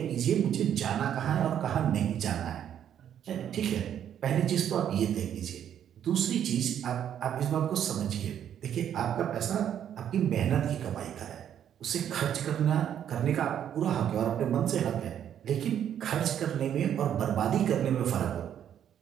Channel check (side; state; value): left; quieter; 9.7 dB